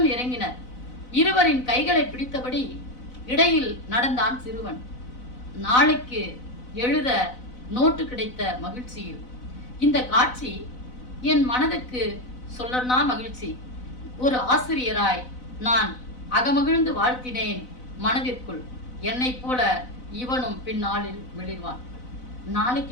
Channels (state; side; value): late; right; 4.0 ms